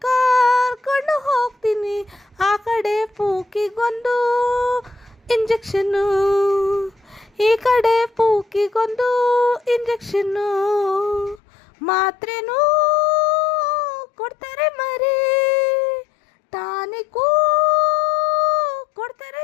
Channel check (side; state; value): right; drops out; at 11.4 s